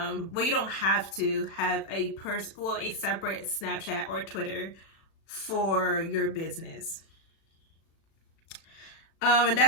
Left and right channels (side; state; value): right; late; 36 ms